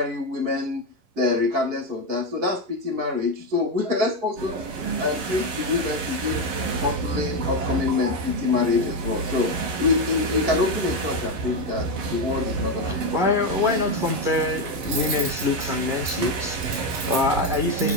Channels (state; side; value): late; left; 11 ms